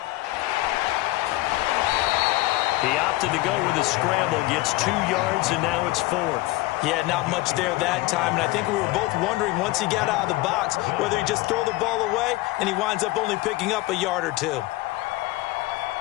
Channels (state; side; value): quieter; right; 19.1 dB